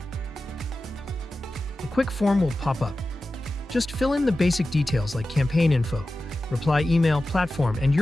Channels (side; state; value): both; normal; correlation 0.94